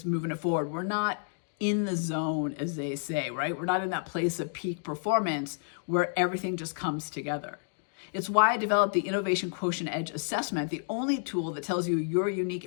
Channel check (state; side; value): silent; right; digital silence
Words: moving it forward. We're not in the zone, as they say, right? We're not in that place of peak performance where everything just comes together. It's why I developed the Innovation Quotient Edge Assessment, the only tool that tells you your unique